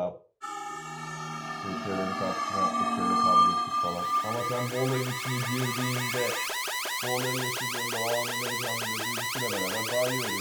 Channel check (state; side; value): identical; both; correlation 1.00